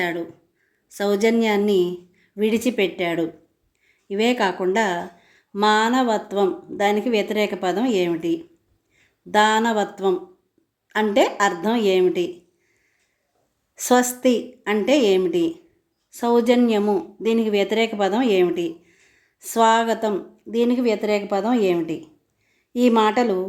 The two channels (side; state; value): both; identical; correlation 1.00